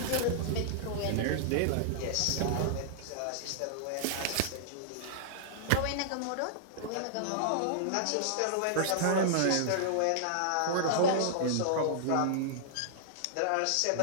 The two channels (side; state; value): both; different; correlation -0.02